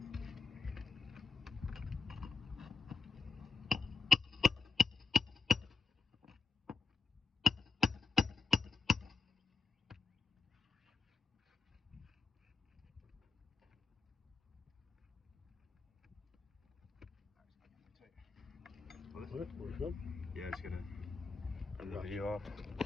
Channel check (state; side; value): quieter; right; 4.3 dB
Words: What? We're good? Yeah, just gonna turn the video off.